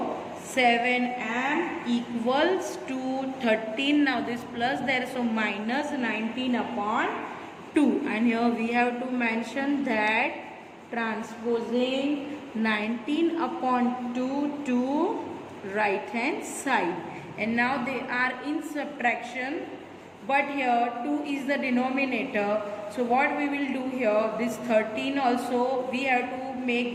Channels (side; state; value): both; identical; correlation 1.00